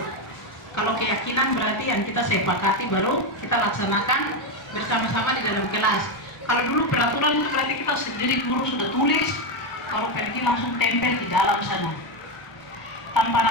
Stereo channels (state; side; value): late; right; 1.0 ms